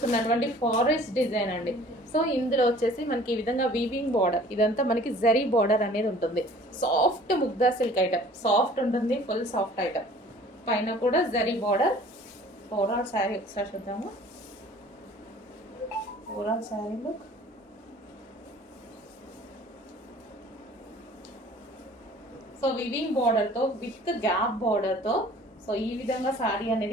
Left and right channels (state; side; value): normal; both; correlation 0.50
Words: forest design అండి. సో ఇందులో వచ్చేసి మనకి ఈ విధంగా వీవింగ్ బార్డర్, ఇదంతా మనకి జరీ బార్డర్ అనేది ఉంటుంది. Soft Mugdha silk item, soft ఉంటుంది, ఫుల్ సాఫ్ట్ ఐటమ్. పైన కూడా జరీ బార్డర్. ఓవరాల్ శారీ ఒకసారి చూద్దాము. Overall sari look. So weaving బార్డర్తో విత్ గ్యాప్ బార్డర్తో సో ఈ విధంగా శారీ